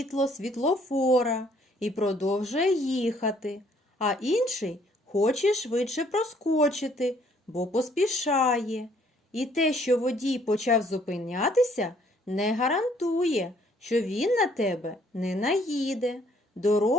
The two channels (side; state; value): both; normal; correlation 0.63